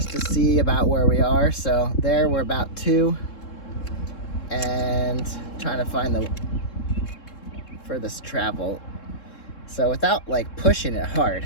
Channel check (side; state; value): right; late; 3.7 ms